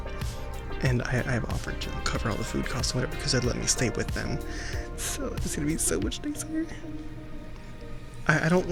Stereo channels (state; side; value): identical; both; correlation 1.00